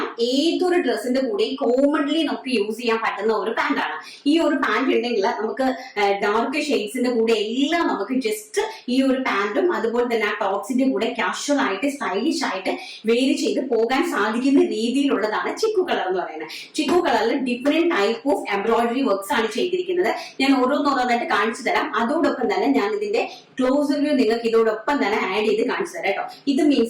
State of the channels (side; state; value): both; identical; correlation 1.00